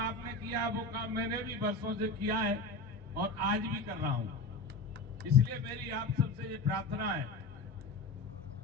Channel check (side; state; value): right; quieter; 3.4 dB